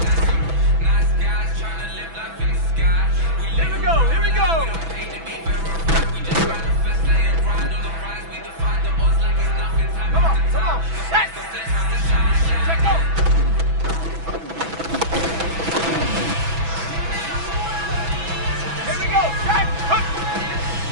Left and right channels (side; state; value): left; late; 6.1 ms